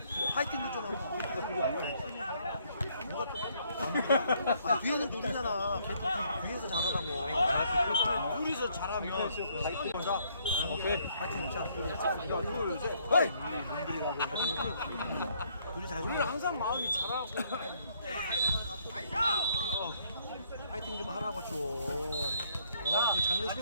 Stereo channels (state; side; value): inverted; both; correlation -0.68